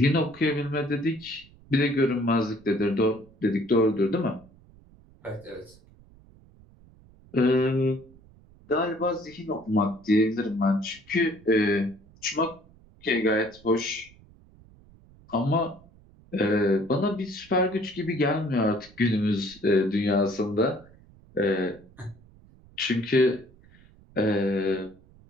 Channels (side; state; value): right; noise; rumble, 26 dB below the sound